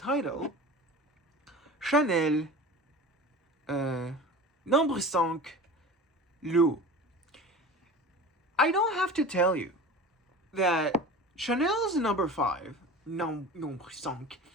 Chanel No.5 L'eau. I don't have to tell you that Chanel's No.5, No.5,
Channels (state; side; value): normal; both; correlation 0.35